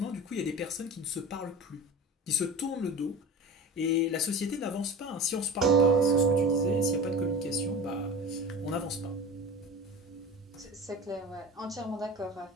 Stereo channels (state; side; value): normal; both; correlation 0.33